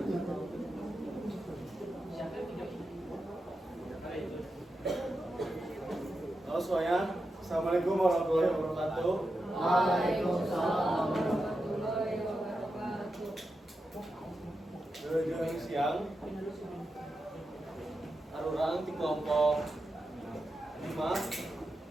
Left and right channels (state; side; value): normal; both; correlation 0.89